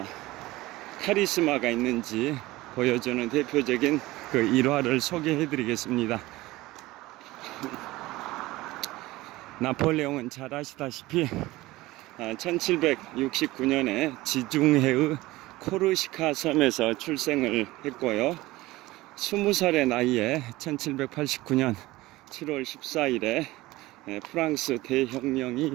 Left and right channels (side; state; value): left; quieter; 18.9 dB